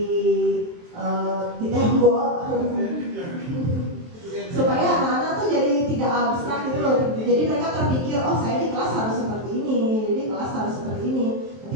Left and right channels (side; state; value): left; late; 23 ms